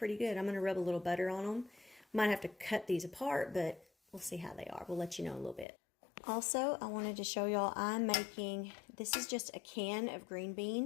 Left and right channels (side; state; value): right; drops out; at 5.7 s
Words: good. I'm gonna rub a little butter on them. Might have to cut these apart, but we'll see how they are. We'll let you know in a little bit. Also, I wanted to show y'all I'm making, this is just a can of green